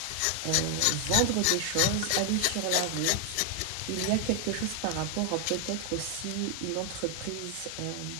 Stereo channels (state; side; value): different; both; correlation 0.00